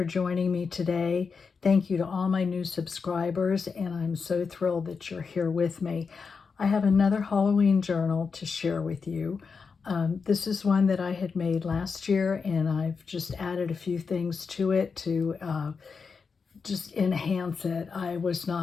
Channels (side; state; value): right; quieter; 5.3 dB